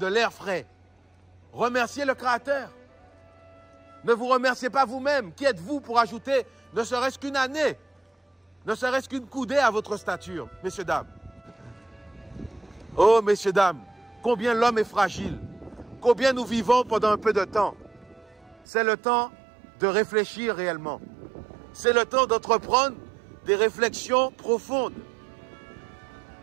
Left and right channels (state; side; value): drops out; left; at 18.7 s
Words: l'air frais. Remerciez le Créateur. Ne vous remerciez pas vous-même. Qui êtes-vous pour ajouter ne serait-ce qu'une année, ne serait-ce qu'une coudée à votre stature, messieurs, dames? Oh, messieurs, dames, combien l'homme est fragile, combien nous vivons pendant un peu de temps. C'est le temps de réfléchir réellement. C'est le temps d'entreprendre des réflexions profondes.